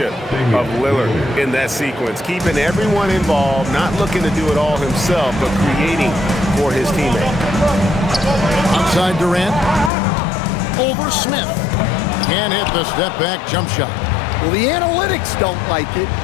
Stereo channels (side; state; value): right; drops out; at 9.9 s